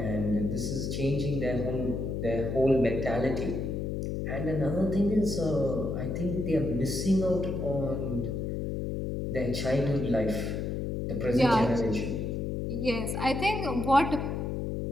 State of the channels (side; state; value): left; noise; hum, 2 dB below the sound